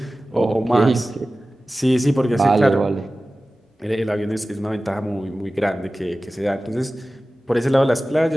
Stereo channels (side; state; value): both; normal; correlation 0.96